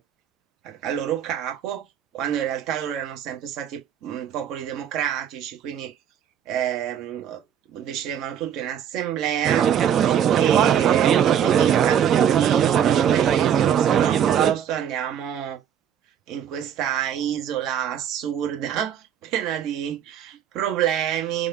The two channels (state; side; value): quieter; left; 9.2 dB